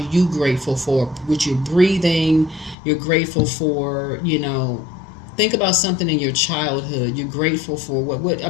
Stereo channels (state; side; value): drops out; right; at 2.8 s